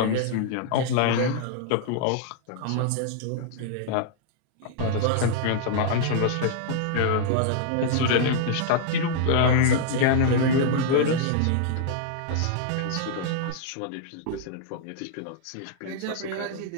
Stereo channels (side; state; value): both; different; correlation -0.01